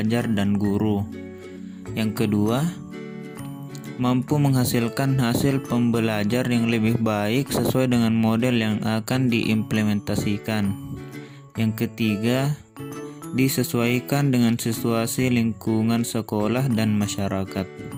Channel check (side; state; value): both; identical; correlation 1.00